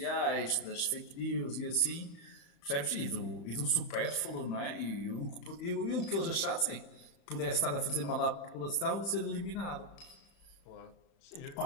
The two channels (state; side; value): late; right; 35 ms